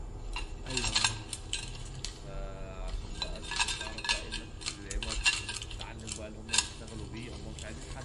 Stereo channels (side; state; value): both; identical; correlation 1.00